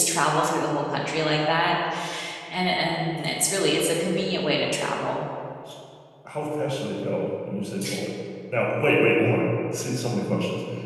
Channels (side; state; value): both; identical; correlation 1.00